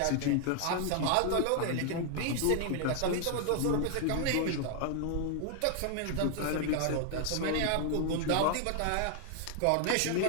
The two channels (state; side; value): different; both; correlation 0.00